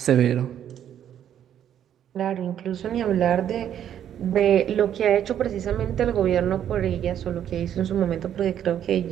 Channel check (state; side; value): quieter; left; 10.0 dB